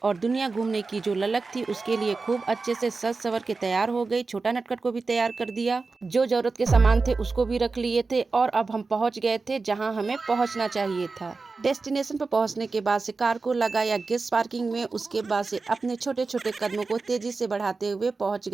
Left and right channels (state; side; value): quieter; left; 4.1 dB